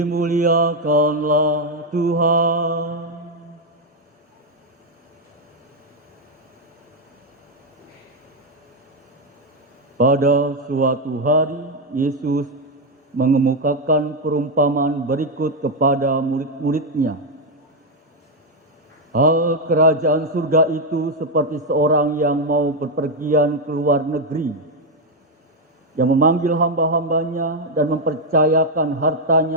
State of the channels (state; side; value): normal; both; correlation 0.03